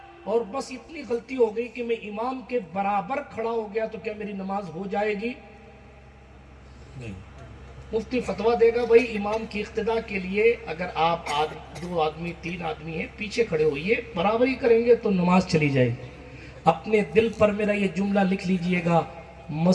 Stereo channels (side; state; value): both; identical; correlation 1.00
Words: اور بس اتنی غلطی ہو گئی کہ میں امام کے برابر کھڑا ہو گیا تو کیا میری نماز ہو جائے گی؟ نہیں۔ مفتی فتویٰ دے گا بھائی امام کی اقتداء کے لیے اگر آپ 2 آدمی 3 آدمی ہیں پیچھے کھڑے ہوئیے، برابری کریں گے تو نماز چلی جائے گی۔ اپنے دل پر میرا یہ جملہ لکھ لیجئے گا،